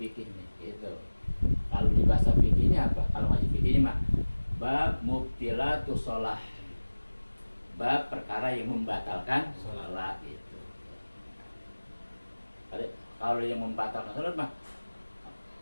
nih gitu. Kalau di bahasa fikihnya apa? Kalau ngaji fikihnya mah bab mubtilatu sholah, bab perkara yang membatalkan sholat itu. Kalau yang membatalkan sholat mah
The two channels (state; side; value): inverted; both; correlation -1.00